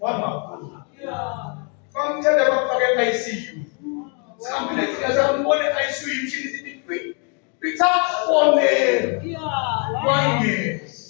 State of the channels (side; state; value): right; quieter; 38.2 dB